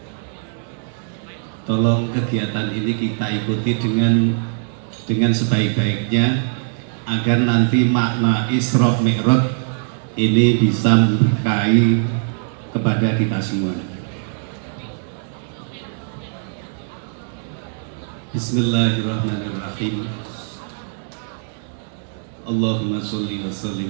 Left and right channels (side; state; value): left; silent; 63 dB below the other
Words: tolong kegiatan ini kita ikuti dengan sebaik-baiknya agar nanti makna Isra Mi'raj ini bisa memberkahi kepada kita semua. Bismillahirrahmanirrahim. Allahumma sholli wa